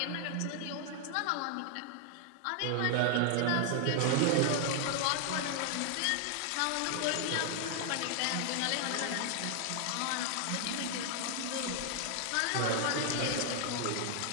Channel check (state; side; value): different; both; correlation 0.00